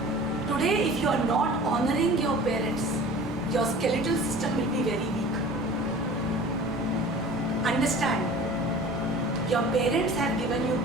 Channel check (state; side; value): normal; both; correlation 0.42